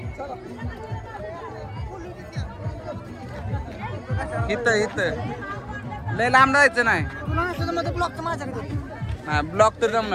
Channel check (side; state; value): both; identical; correlation 1.00